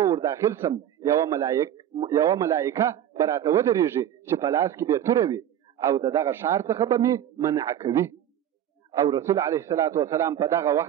ور داخل سم یوه ملایکه به راته ودرېږي چې په لاس کې به توره وي او د دغه ښار څخه به مې منع کوي. او رسول علیه الصلاة والسلام په دغه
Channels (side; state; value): left; quieter; 10.8 dB